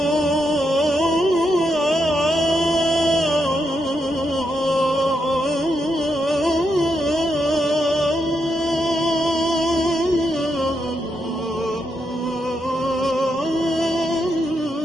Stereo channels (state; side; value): normal; both; correlation 0.81